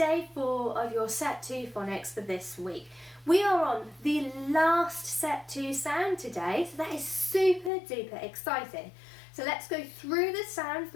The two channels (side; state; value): right; drops out; at 7.7 s